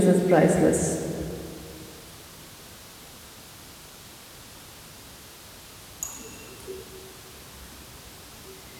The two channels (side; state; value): both; identical; correlation 1.00